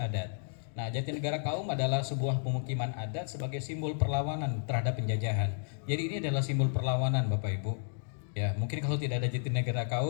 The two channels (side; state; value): right; silent; digital silence